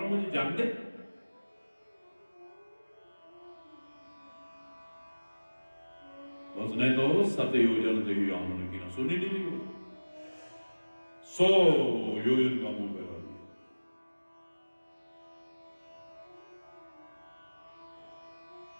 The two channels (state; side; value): inverted; both; correlation -1.00